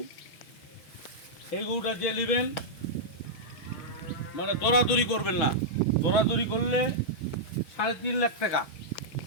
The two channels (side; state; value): right; late; 6.2 ms